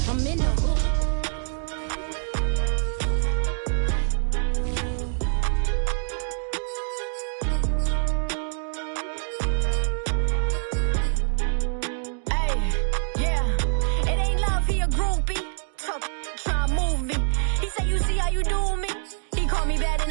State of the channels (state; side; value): silent; left; 62 dB below the other